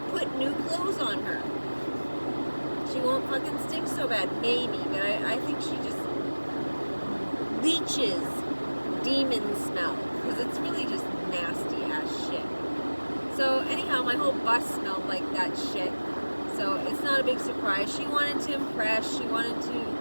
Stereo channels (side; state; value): both; inverted; correlation -1.00